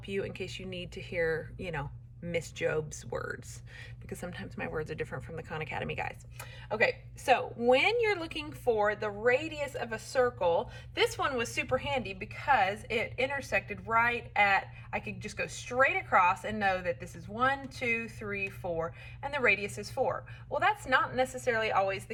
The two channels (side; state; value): both; identical; correlation 1.00